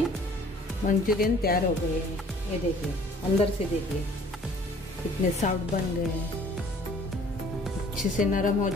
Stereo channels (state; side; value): normal; both; correlation 0.55